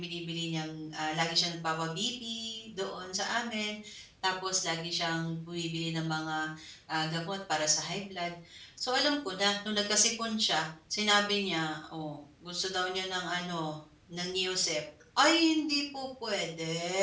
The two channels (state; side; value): identical; both; correlation 1.00